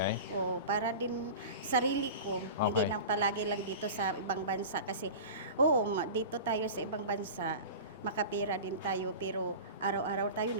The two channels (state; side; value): inverted; both; correlation -0.33